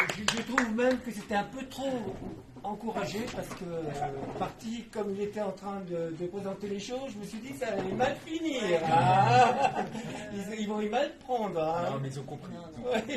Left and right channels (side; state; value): both; identical; correlation 1.00